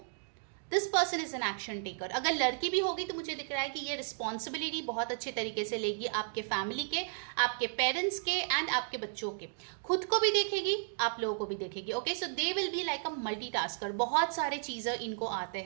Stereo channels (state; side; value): silent; left; digital silence